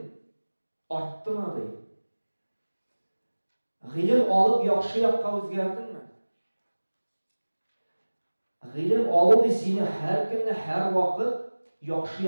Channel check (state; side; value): inverted; both; correlation -1.00